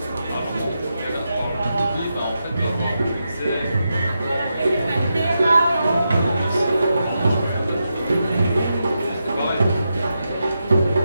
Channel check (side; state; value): both; inverted; correlation -0.87